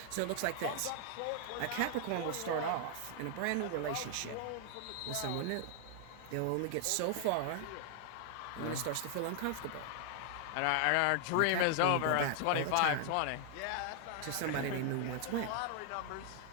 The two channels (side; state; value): both; different; correlation 0.00